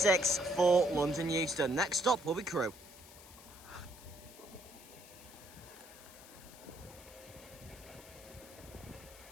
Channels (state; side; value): noise; left; hiss, 19 dB below the sound